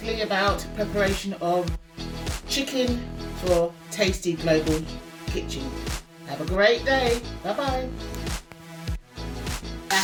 about preparation of chicken for Tasty Global Kitchen. Have a great day. Bye bye.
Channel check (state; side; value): identical; both; correlation 1.00